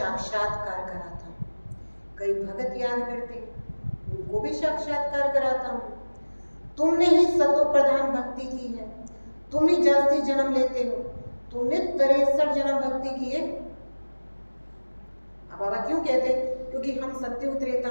कराता हूँ। कई भगत याद करते हैं, उनको भी साक्षात्कार कराता हूँ। तुमने ही सतो प्रधान भक्ति की है, तुम ही जास्ती जन्म लेते हो, तुमने 63 जन्म भक्ति की है। अब बाबा क्यों कहते हैं? क्योंकि हम सत्युग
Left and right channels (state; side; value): inverted; both; correlation -1.00